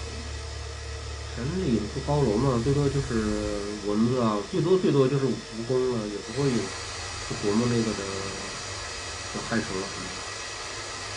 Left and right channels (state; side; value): identical; both; correlation 1.00